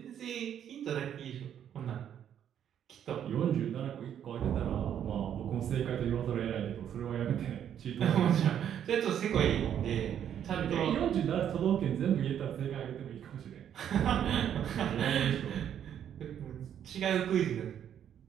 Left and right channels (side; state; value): left; quieter; 9.5 dB